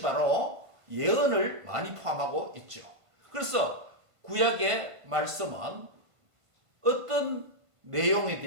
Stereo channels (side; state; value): left; late; 1.5 ms